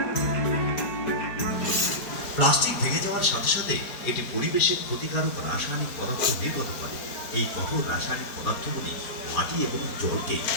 প্লাস্টিক ভেঙে যাওয়ার সাথে সাথে এটি পরিবেশের ক্ষতিকারক রাসায়নিক পদার্থ নির্গত করে। এই কঠোর রাসায়নিক পদার্থগুলি মাটি এবং জলকে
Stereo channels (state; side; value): late; right; 4.5 ms